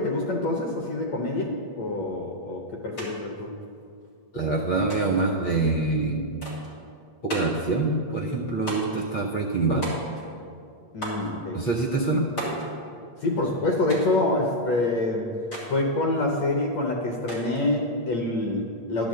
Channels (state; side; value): late; right; 8.5 ms